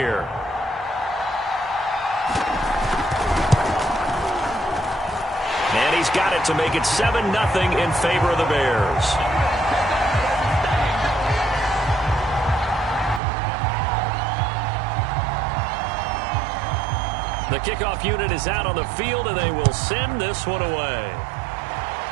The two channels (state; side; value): drops out; left; at 13.2 s